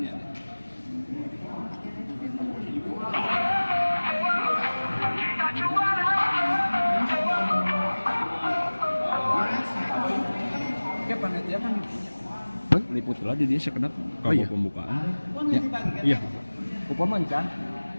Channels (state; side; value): inverted; both; correlation -1.00